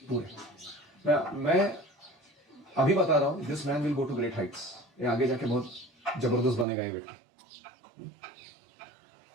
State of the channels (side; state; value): left; drops out; at 6.7 s